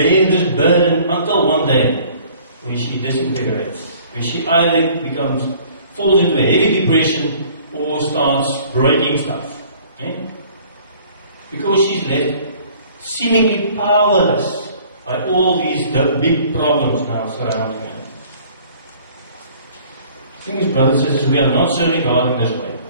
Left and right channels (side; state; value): both; inverted; correlation -0.53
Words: this burden until one day when she disintegrates, when she either falls into a heavy depression or starts breaking stuff. Because she's left seemingly powerless by all these big problems now surrounding her. The thing is, brothers and sisters, we are not serving God in this way.